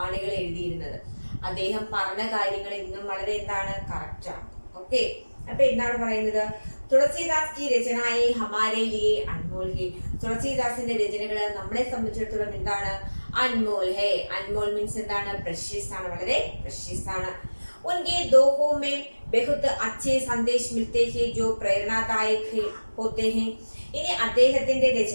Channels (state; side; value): inverted; both; correlation -1.00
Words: എഴുതിയിരുന്നത്. അദ്ദേഹം പറഞ്ഞ കാര്യങ്ങൾ ഇന്നും വളരെ എന്താണ് കറക്റ്റാണ്. ഓക്കെ, അപ്പൊ എന്താണ് പറയുന്നത്? തുളസീദാസ് की रचनाएं हमारे लिए अनमोल है. തുളസീദാസിന്റെ രചനകൾ നമ്മളെ സംബന്ധിച്ചിടത്തോളം എന്താണ്? അൻമോൽ ഹേ. അൻമോൽ മീൻസ് എന്താണ്? പ്രഷ്യസ് ആണ്, വളരെ പ്രഷ്യസ് ആണ്. उनके दोहों में बहुत अच्छे संदेश मिलते हैं जो प्रेरणादायक होते हैं. ഇനി അദ്ദേഹത്തിന്റെ